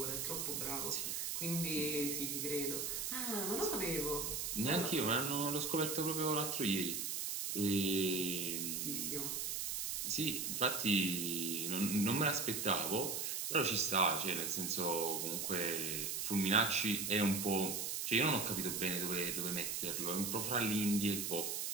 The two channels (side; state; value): right; noise; hiss, 2 dB below the sound